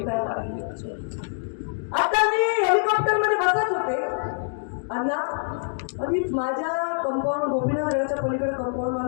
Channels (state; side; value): silent; right; digital silence